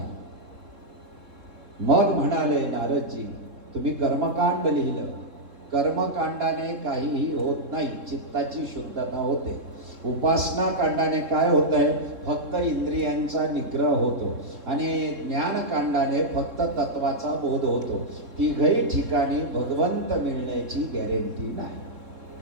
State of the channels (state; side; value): late; left; 3.7 ms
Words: मग म्हणाले नारदजी, तुम्ही कर्मकांड लिहिलं, कर्मकांडाने काहीही होत नाही, चित्ताची शुद्धता होते. उपासना कांडाने काय होत आहे? फक्त इंद्रियांचा निग्रह होतो. आणि ज्ञानकांडाने फक्त तत्वाचा बोध होतो. तिघही ठिकाणी भगवंत मिळण्याची गॅरंटी नाही.